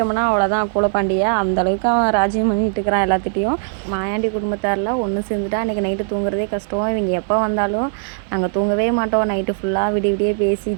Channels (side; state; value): left; silent; 66 dB below the other